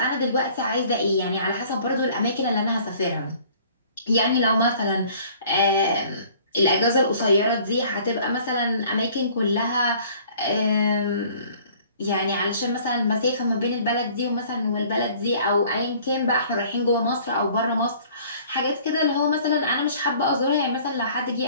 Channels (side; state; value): both; inverted; correlation -0.53